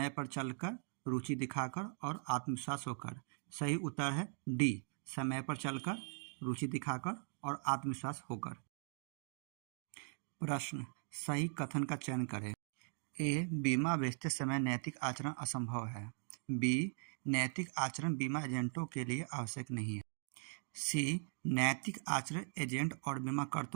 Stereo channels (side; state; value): left; silent; 51 dB below the other